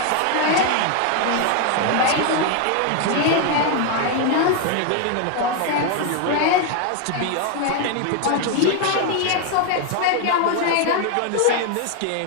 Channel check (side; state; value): both; different; correlation 0.01